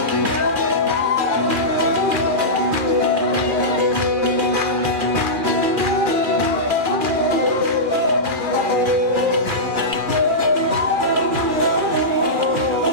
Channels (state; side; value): late; left; 2.4 ms